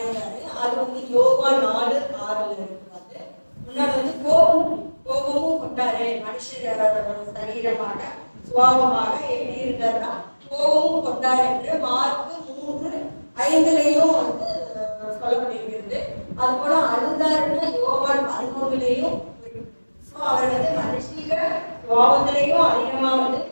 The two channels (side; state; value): both; inverted; correlation -1.00